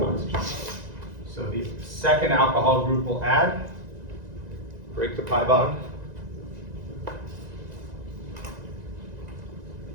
oxygen. So the second alcohol group will add, break the pi bond.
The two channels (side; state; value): left; late; 1.9 ms